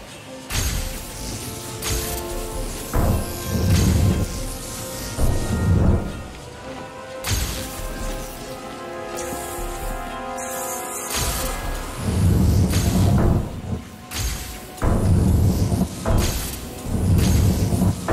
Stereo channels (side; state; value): both; identical; correlation 1.00